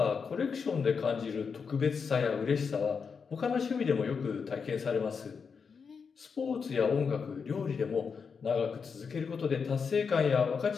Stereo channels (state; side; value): quieter; right; 5.8 dB